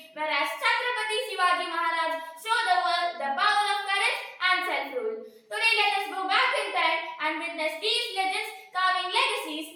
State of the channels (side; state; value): both; identical; correlation 1.00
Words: whereas Chhatrapati Shivaji Maharaj showed the world the power of courage and self-rule. Today let us go back in time and witness these legends carving